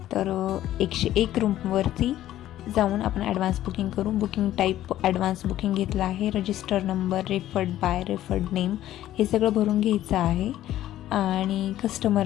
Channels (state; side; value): quieter; right; 13.3 dB